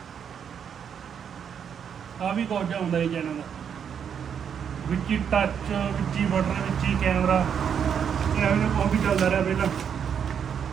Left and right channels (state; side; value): quieter; left; 7.8 dB